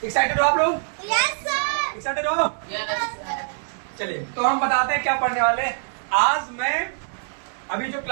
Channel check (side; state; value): left; silent; digital silence